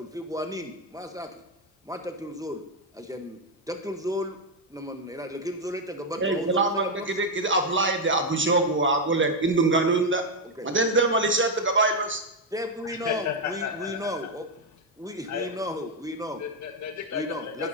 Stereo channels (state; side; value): normal; both; correlation 0.03